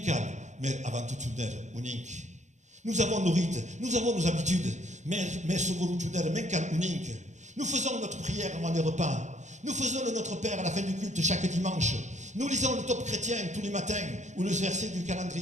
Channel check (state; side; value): late; left; 0.34 ms